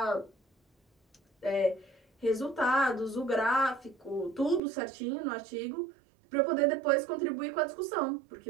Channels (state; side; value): drops out; left; at 4.6 s